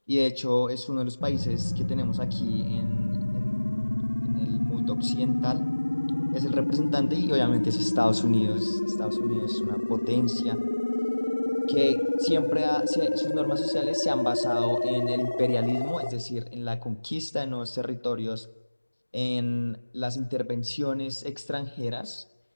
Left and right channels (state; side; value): inverted; both; correlation -1.00